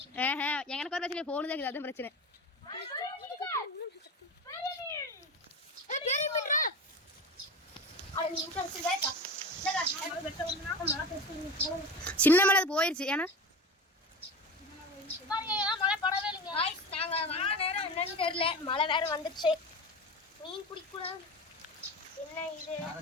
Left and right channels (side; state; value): both; normal; correlation 0.28